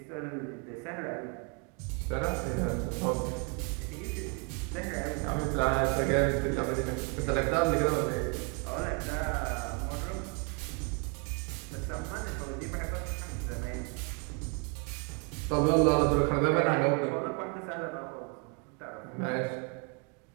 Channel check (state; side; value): quieter; left; 35.8 dB